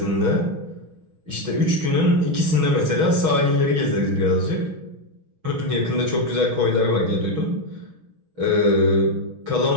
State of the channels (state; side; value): late; left; 6.2 ms